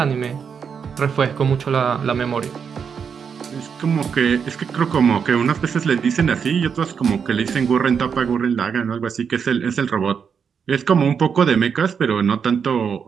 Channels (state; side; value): quieter; left; 6.7 dB